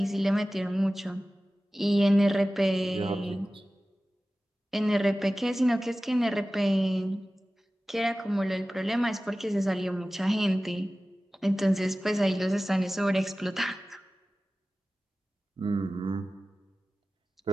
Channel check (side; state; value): both; normal; correlation 0.96